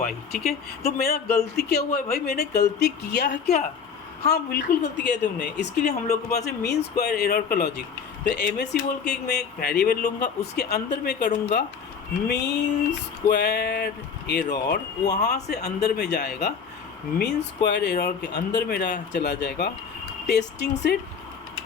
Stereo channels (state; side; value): quieter; right; 6.4 dB